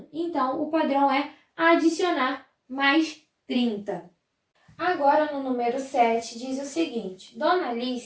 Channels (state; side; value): identical; both; correlation 1.00